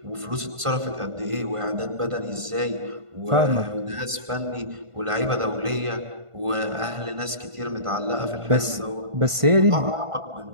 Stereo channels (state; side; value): late; left; 1.5 ms